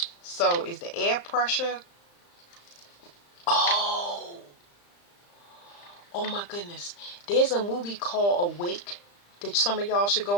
So is the air pressure? Oh, Oh my goodness. There's a movie called Awake that some of y'all should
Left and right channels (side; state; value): right; late; 35 ms